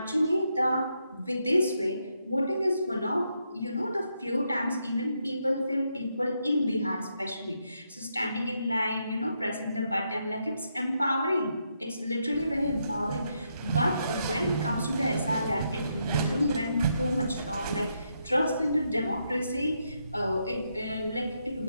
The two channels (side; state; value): both; inverted; correlation -0.80